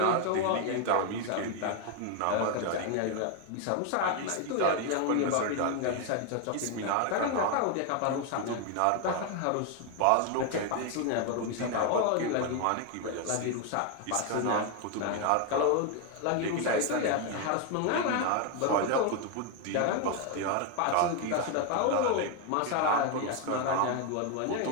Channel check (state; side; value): different; both; correlation 0.01